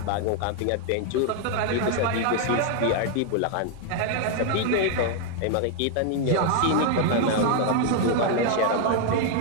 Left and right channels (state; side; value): different; both; correlation 0.00